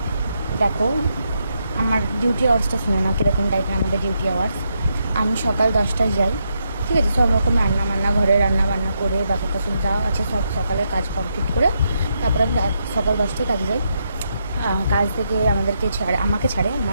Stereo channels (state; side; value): inverted; both; correlation -0.81